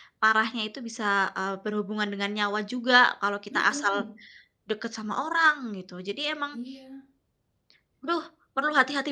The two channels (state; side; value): identical; both; correlation 1.00